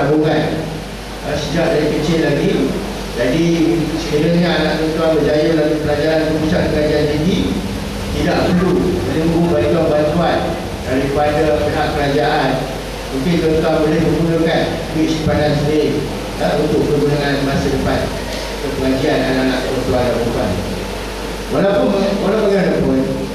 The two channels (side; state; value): both; identical; correlation 1.00